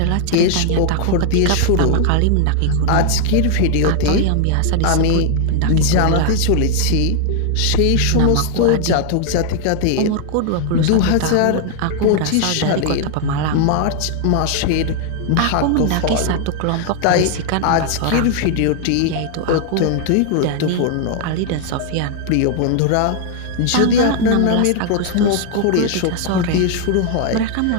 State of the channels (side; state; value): both; different; correlation 0.00